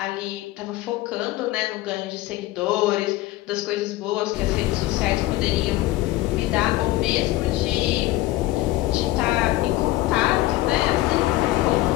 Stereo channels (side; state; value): right; quieter; 17.1 dB